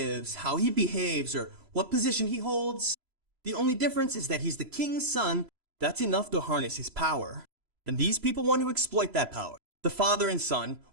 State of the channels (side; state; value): left; late; 3.0 ms